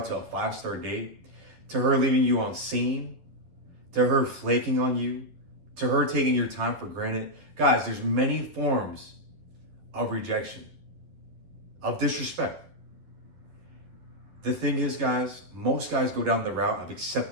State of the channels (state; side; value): late; left; 11 ms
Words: to a 5-star date, to her leaving you on scene, to her flaking on you, to her taking your time for granted. Guys, there's many forms of rejection, of disrespect. The thing is, guys, most guys go down the route of